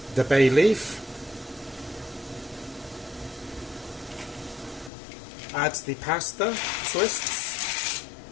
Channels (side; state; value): right; drops out; at 4.9 s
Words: the bay leaf, add the pasta twists,